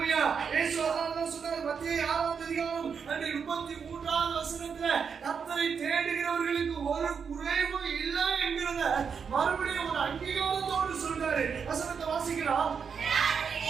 இயேசு அதான் சொன்னார், மத்தேயு 6வது அதிகாரம் 33வது வசனத்துல கர்த்தரை தேடுகிறவர்களுக்கு ஒரு குறைவும் இல்லை என்கிறத மறுபடியும் ஒரு அங்கீகாரத்தோடு சொல்றாரு. வசனத்தை வாசிக்கலாம்.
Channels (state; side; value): quieter; left; 6.4 dB